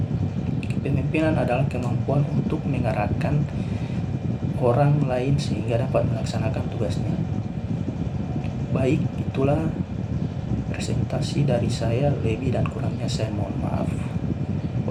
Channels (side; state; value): both; identical; correlation 1.00